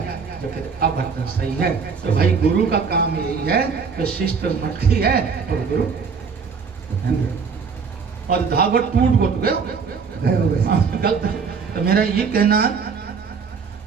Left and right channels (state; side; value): quieter; left; 5.6 dB